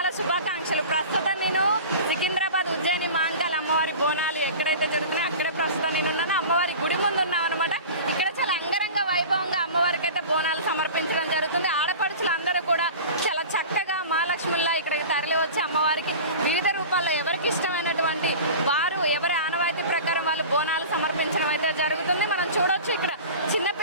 శుభాకాంక్షలు. ప్రస్తుతం నేను సికింద్రాబాద్ ఉజ్జయిని మహంకాళి అమ్మవారి బోనాలు ఎక్కడైతే జరుగుతున్నాయో అక్కడే ప్రస్తుతం నేను ఉన్నాను. అమ్మవారి గుడి ముందు ఉన్నాం అనమాట. ఇక్కడ చాలా అంగరంగ వైభవంగా అమ్మవారికి అయితే బోనాలు సమర్పించడం జరుగుతుంది. ఆడపడుచులు అందరూ కూడా చాలా చక్కగా మహాలక్ష్మిలా ఇక్కడికి తరలి వచ్చి అమ్మవారికి వివిధ రూపాల్లో ఎవరికి ఇష్టమైనటువంటి వారు ఎవరి ఆనవాయితీ ప్రకారం వాళ్ళు బోనాలు సమర్పించడం అయితే జరుగుతుంది. మనం చూడొచ్చు ఇక్కడ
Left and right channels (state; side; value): inverted; both; correlation -0.36